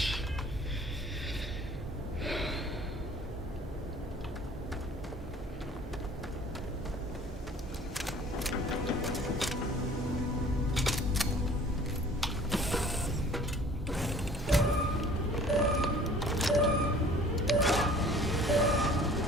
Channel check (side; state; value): both; normal; correlation 0.50